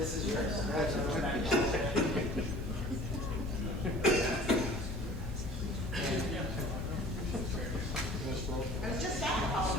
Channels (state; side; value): normal; both; correlation 0.46